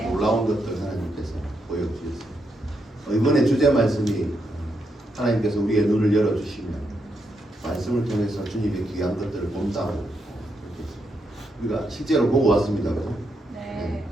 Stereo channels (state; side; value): normal; both; correlation 0.81